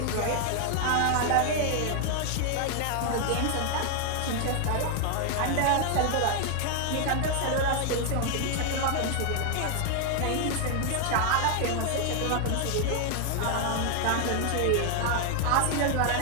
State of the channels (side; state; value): both; different; correlation 0.00